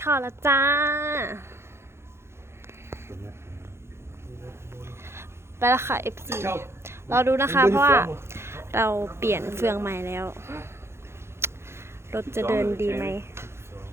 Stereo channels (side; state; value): left; late; 0.12 ms